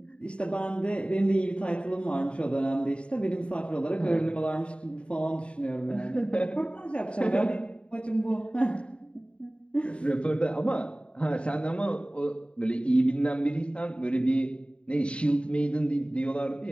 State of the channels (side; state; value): right; late; 0.058 ms